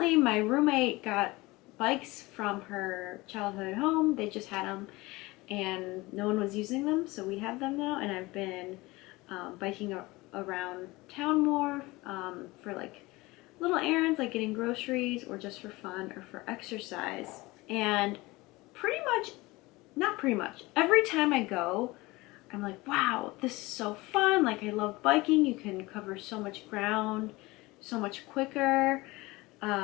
my roommate got bikes from her childhood home. They just had them and no one was using them, so we have them now, and I've been biking around town more for like little errands like getting groceries or just for fun or for exercise. And every time I go, I'm like, wow, this is so fun. Like, I love biking. You can cover so much ground so much quicker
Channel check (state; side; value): quieter; right; 21.6 dB